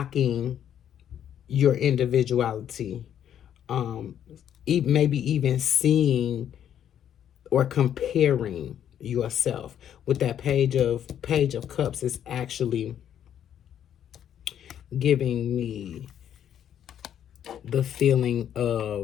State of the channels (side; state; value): right; quieter; 9.8 dB